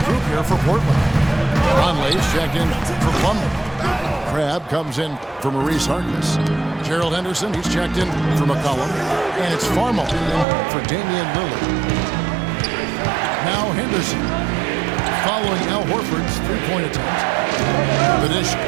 group here for Portland. Conley's checked in for Plumlee. Crabbe comes in for Maurice Harkless. Gerald Henderson, he's checked in for McCollum. And it's Farmo in for Damian Lillard. Now Henderson, following Al Horford's three-point attempt. The dish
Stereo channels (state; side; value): drops out; left; at 10.5 s